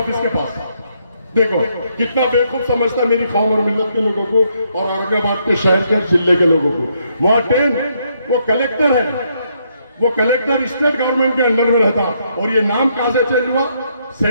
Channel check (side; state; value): both; inverted; correlation -0.74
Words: के पास। देखो कितना बेवकूफ समझता मेरी कौम और मिल्लत के लोगों को और औरंगाबाद के शहर के जिले के लोगों को। वहां ट्रेन, वो कलेक्टर है, वो कलेक्टर स्टेट गवर्नमेंट के अंडर में रहता, और ये नाम कहां से चेंज हुआ,